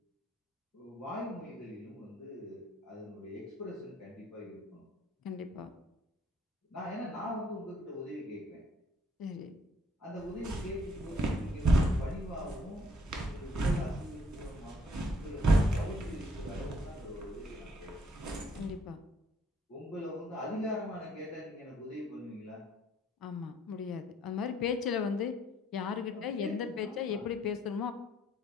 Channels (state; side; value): normal; both; correlation 0.65